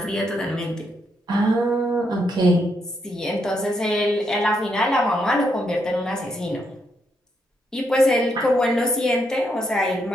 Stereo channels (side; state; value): both; normal; correlation 0.78